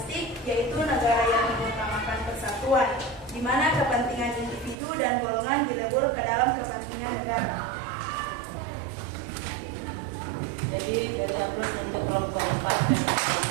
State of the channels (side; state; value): left; drops out; at 4.8 s